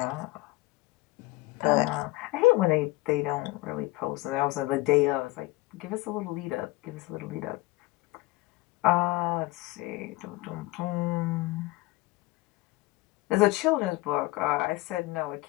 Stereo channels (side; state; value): right; quieter; 20.6 dB